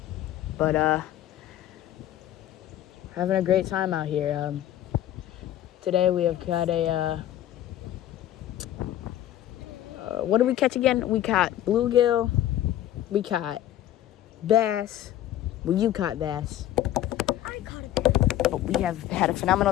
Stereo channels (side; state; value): right; quieter; 12.5 dB